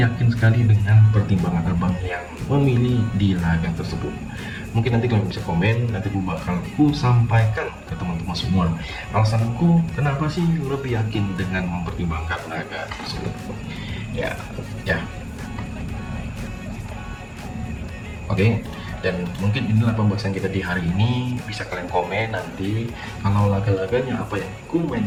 sekali dengan pertimbangan Abang yang memilih di laga tersebut. Mungkin nanti kalian bisa komen, nanti aku sampaikan ke teman-teman semua alasanku kenapa sih lebih yakin dengan mempertimbangkan laga tersebut. Ya. Oke, dan mungkin inilah pembahasan kita di hari ini. Bisa kalian komen nanti kalau laga-laganya apa yang ku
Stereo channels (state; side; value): identical; both; correlation 1.00